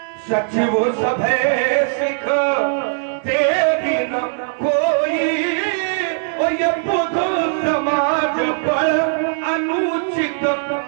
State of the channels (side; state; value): left; silent; 66 dB below the other